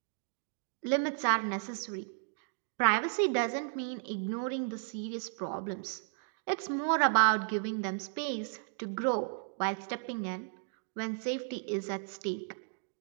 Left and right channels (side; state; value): left; silent; digital silence